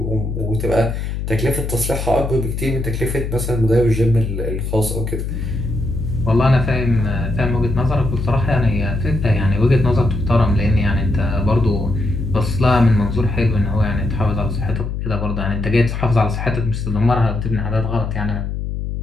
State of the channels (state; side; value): noise; left; hum, 4 dB below the sound